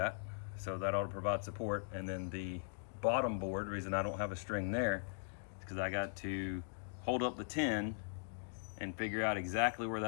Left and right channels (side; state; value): right; silent; digital silence